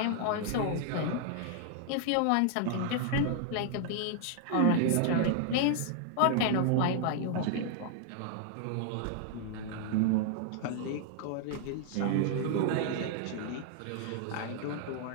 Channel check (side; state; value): both; different; correlation 0.00